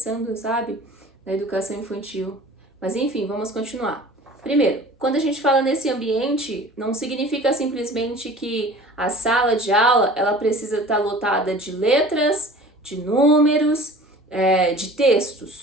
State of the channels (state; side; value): normal; both; correlation 0.43